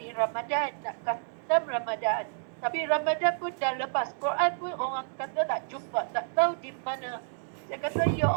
Ramadan, nak khatam Ramadan. Tapi Ramadan pun dah lepas. Quran pun orang kata tak jumpa, tak tahu di mana. Saya kata, Ya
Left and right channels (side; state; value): left; silent; digital silence